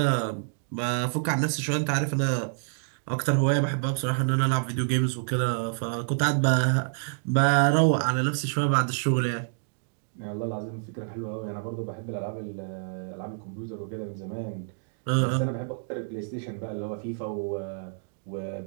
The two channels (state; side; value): silent; left; digital silence